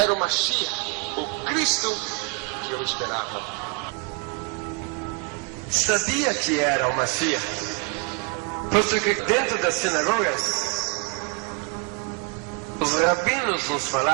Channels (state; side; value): quieter; left; 28.7 dB